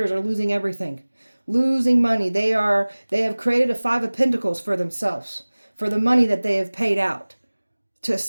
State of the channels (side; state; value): both; inverted; correlation -1.00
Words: are losing everything, losing money. They have created a 5 of Pentacles for themselves, for the money that they have paid out to